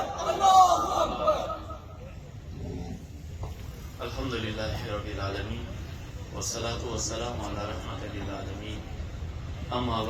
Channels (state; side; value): identical; both; correlation 1.00